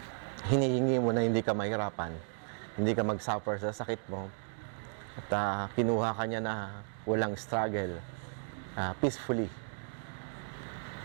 hinihingi mo na hindi ka mahirapan, hindi ka mag-suffer sa sakit mo. At kinuha ka niya na walang struggle, peacefully,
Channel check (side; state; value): left; silent; 55 dB below the other